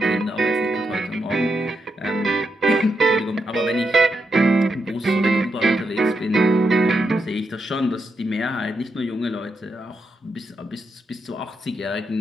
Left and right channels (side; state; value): both; normal; correlation 0.83